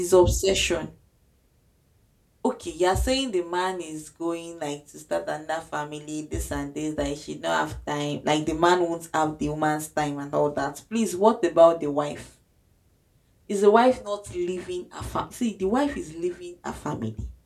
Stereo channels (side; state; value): both; identical; correlation 1.00